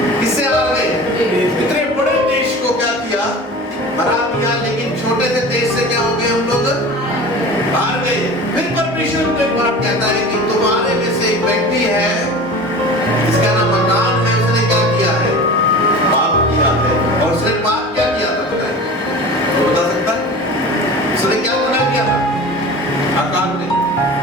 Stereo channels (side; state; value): both; normal; correlation 0.36